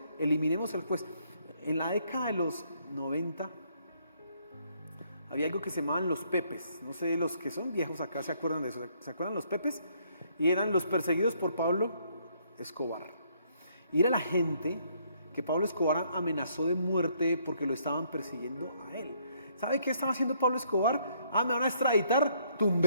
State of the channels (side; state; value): both; inverted; correlation -0.68